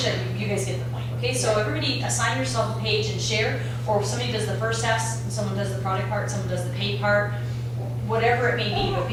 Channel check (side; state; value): both; identical; correlation 1.00